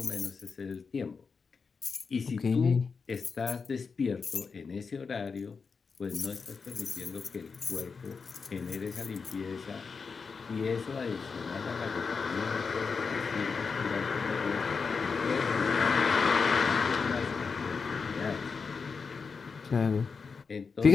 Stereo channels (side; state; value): right; quieter; 5.2 dB